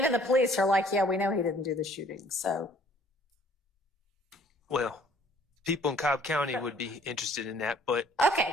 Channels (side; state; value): both; normal; correlation 0.58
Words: the police are like, yeah, we know he didn't do the shooting, so. Well, people in Cobb County would be interested in that, but. Okay,